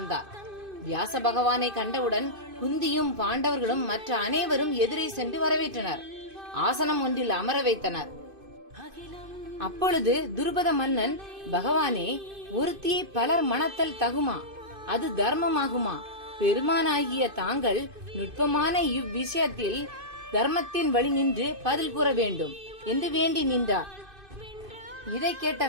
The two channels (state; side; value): late; left; 2.5 ms